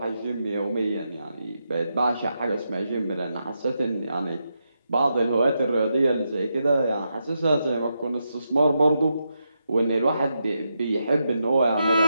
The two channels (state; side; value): inverted; both; correlation -0.84